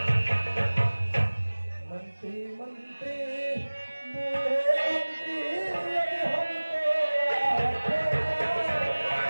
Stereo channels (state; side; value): inverted; both; correlation -1.00